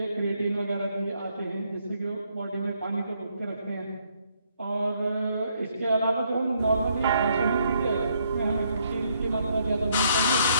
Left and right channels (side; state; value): both; inverted; correlation -0.71